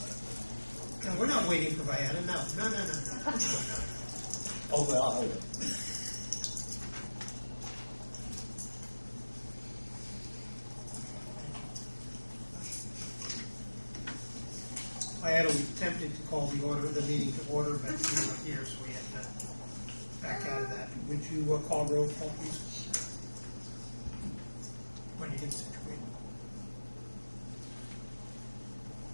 No, we're not waiting for Vianna. No. Oh, well, I'll hold it. Vianna, we attempted to call the meeting to order, but you weren't here, so we had to back out of that. Would you call roll call, please? When you get situated.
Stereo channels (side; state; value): both; inverted; correlation -1.00